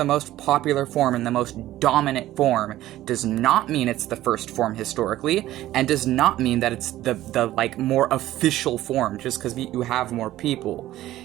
most popular form and the most dominant form does not mean it's the first form historically, and does not mean that it's the like more official form just because you have more people.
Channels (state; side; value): quieter; left; 14.7 dB